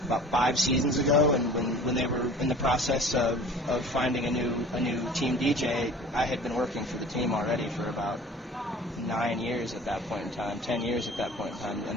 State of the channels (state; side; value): normal; both; correlation 0.45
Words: about 5 seasons ago. And when they were in the process of finding a new team DJ, I had been working for the team already for about 9 years at that point in time, 10 years at that point in time,